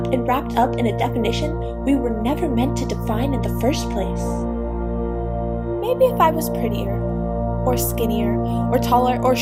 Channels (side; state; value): both; identical; correlation 1.00